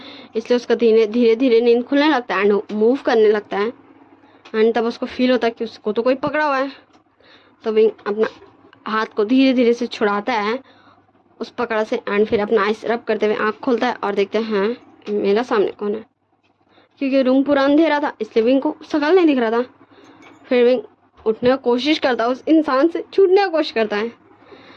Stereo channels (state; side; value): identical; both; correlation 1.00